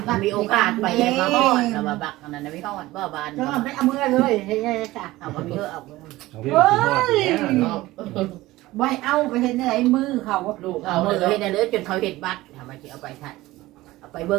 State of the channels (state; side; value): quieter; left; 18.0 dB